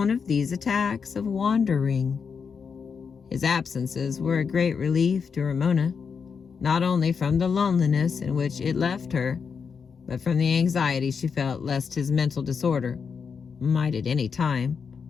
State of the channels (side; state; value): right; quieter; 6.0 dB